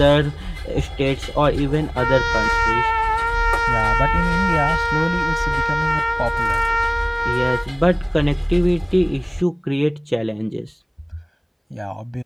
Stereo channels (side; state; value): both; identical; correlation 1.00